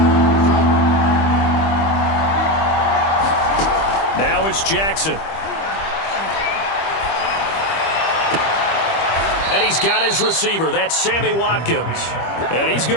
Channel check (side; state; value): right; late; 25 ms